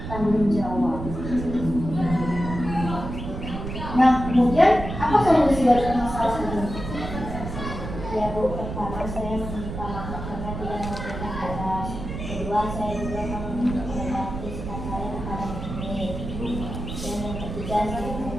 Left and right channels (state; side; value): noise; right; rumble, 7 dB below the sound